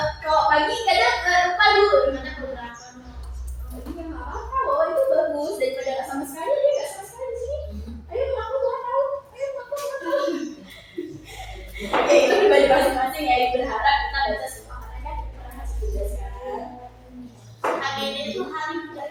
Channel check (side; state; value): both; identical; correlation 1.00